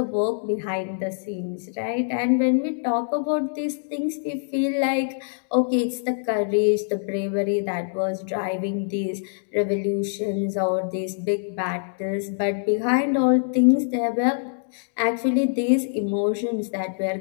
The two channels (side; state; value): right; silent; digital silence